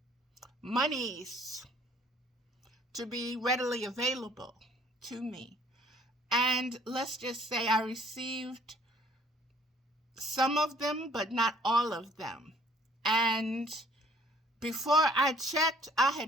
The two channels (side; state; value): both; normal; correlation 0.57